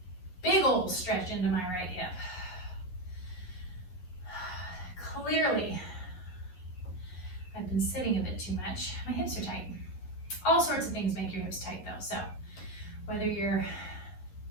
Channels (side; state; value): right; late; 11 ms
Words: big old stretch into my right hip. Clearly, I've been sitting a bit too much. My hips are tight. All sorts of things make your hips tight though, so whether you're